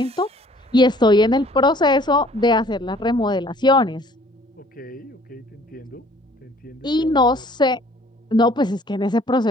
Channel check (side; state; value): both; normal; correlation 0.56